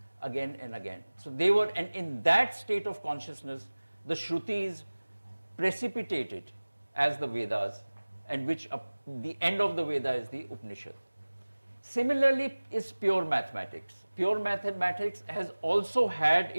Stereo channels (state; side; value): inverted; both; correlation -1.00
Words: again and again. So they were, and in that state of consciousness, the Shrutis precipitated as the Vedas, and which the end of the Veda is the Upanishad. Similarly is pure mathematics. Pure mathematics has also had